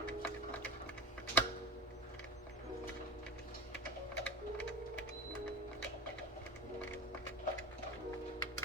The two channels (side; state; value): both; normal; correlation 0.29